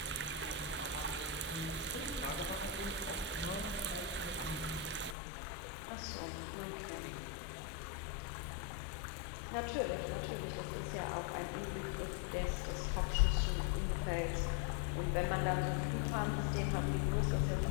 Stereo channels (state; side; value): drops out; right; at 5.2 s